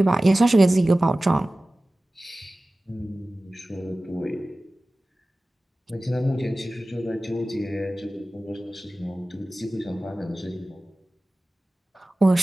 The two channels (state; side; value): normal; both; correlation 0.97